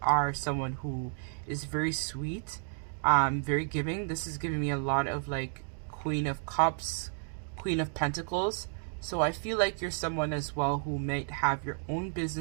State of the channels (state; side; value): silent; left; 57 dB below the other